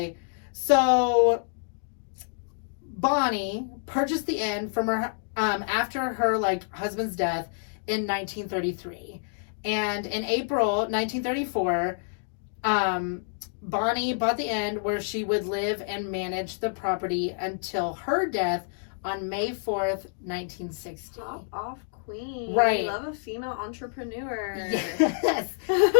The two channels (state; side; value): silent; right; digital silence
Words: So Bonnie purchased the inn from her after her husband's death in 1933, and in April 1934, Bonnie bought the inn where she would live and manage the property until her death on May 4th, 1960. Top off queen. Right. Love a female entrepreneur. Yes.